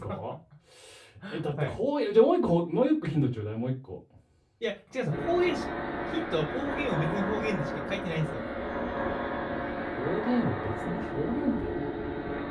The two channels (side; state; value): both; identical; correlation 1.00